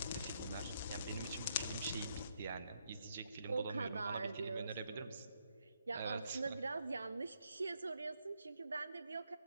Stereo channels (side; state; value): both; inverted; correlation -0.75